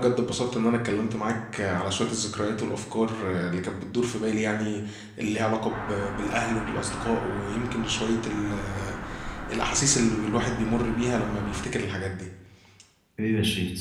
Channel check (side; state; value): both; identical; correlation 1.00